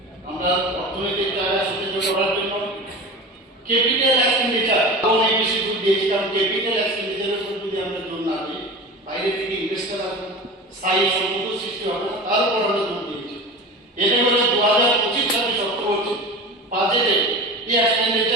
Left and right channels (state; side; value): normal; both; correlation 0.31